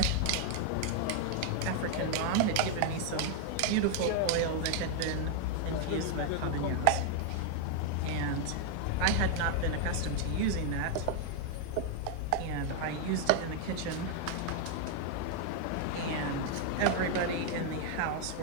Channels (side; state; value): both; different; correlation 0.00